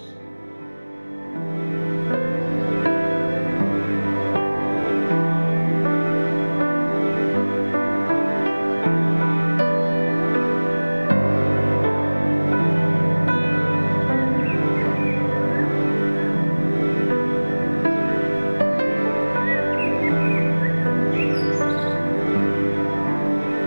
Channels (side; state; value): both; inverted; correlation -1.00